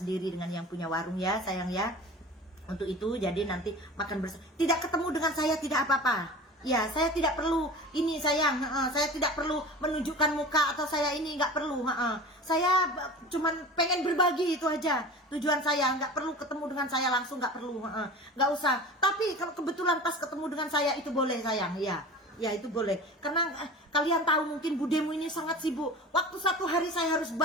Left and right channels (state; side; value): normal; both; correlation 0.36